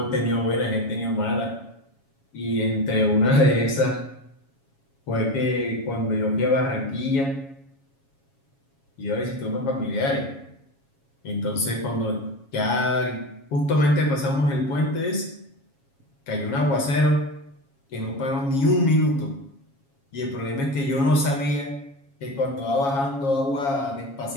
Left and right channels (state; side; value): late; right; 7.3 ms